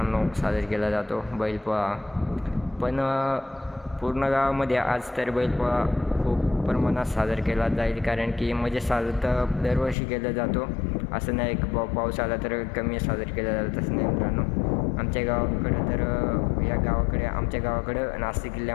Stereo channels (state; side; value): drops out; right; at 10.0 s